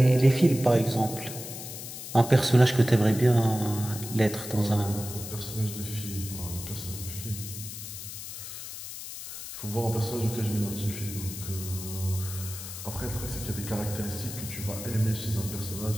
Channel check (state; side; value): noise; left; hiss, 10 dB below the sound